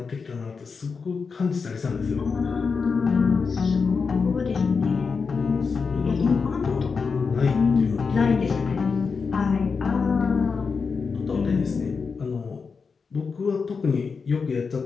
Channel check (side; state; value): right; quieter; 5.2 dB